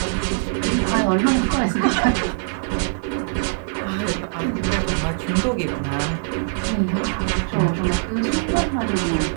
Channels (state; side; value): silent; left; digital silence